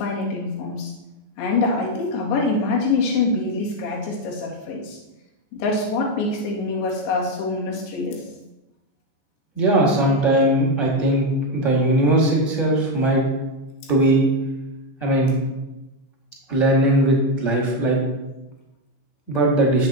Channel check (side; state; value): right; late; 15 ms